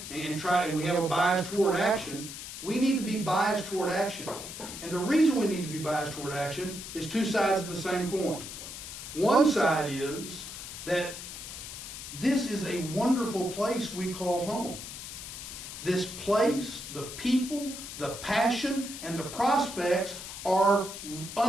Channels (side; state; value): left; noise; hiss, 10 dB below the sound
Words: and we have a bias toward action. We need to be biased toward action. And the reason we need to be biased toward action is 2 sides of the same coin. One side is that this is a wonderful place we call home. This place, the people, the passion, and the prospects are